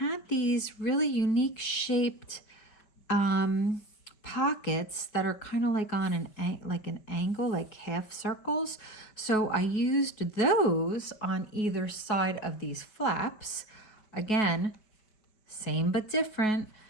these really unique shaped pockets that are kind of like on an angle, like half circles. So I used those on either side of these flaps. Again, same but different.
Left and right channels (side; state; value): right; late; 4.7 ms